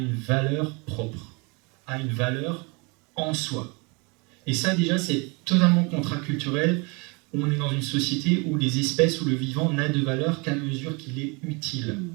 valeur propre, a une valeur en soi. Et ça déjà c'est totalement contraculturel. On est dans une société où les espèces ou le vivant n'a de valeur qu'à mesure qu'il est utile.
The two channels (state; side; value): quieter; left; 29.8 dB